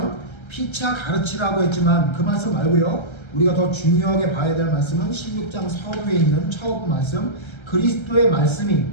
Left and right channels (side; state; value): right; late; 1.3 ms